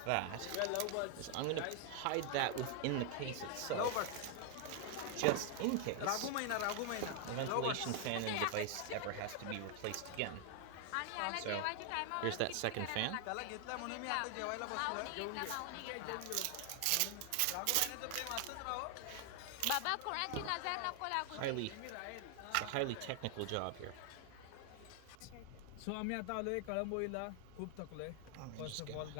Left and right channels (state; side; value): different; both; correlation 0.00